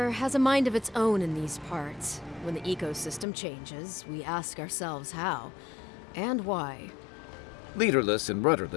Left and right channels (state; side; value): drops out; right; at 3.2 s